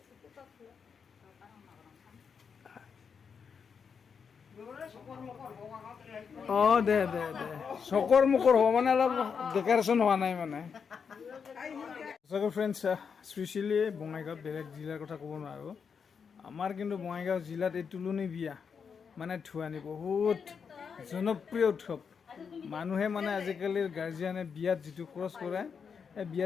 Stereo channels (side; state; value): right; quieter; 6.3 dB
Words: দে দে দে চকৰ মুখৰ হ'ব মানে অলপ ডেকৰেশ্যন হোৱা নাই মানে সঁচাকৈ ফ্ৰেণ্ডছ স্পেচিয়েলি বঙাইগাঁৱত বেলেগ জিলাৰ কথা ক'ব নোৱাৰোঁ আমাৰ কিন্তু বঙাইগাঁও জিলাত এই তুলনি বিয়া মানে ধুৱানি বহুত জনপ্ৰিয় উৎসৱ মানুহে মানে আজিকালিৰ গাৰ্জিয়ানে বিয়াত যিটো খৰচ কৰে এই